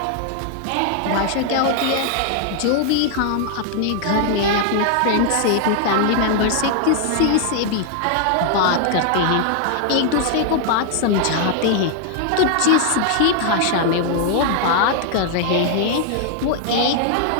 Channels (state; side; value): different; both; correlation 0.00